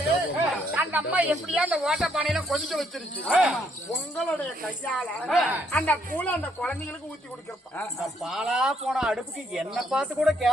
அந்த அம்மா எப்படியா அந்த ஓட்ட பானையில கொதிக்க வச்சிருச்சு. உங்களுடைய கையால அந்த கூழ அந்த குழந்தைங்களுக்கு ஊத்தி கொடுக்கிறப்ப பாலா போன அடுப்புக்கு என்ன பார்த்து கூட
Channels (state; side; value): normal; both; correlation 0.71